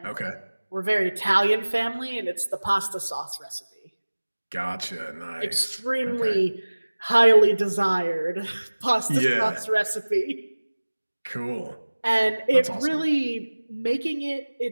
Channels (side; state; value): both; inverted; correlation -1.00